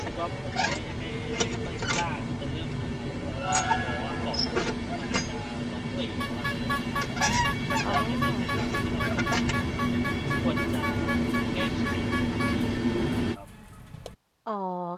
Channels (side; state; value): both; identical; correlation 1.00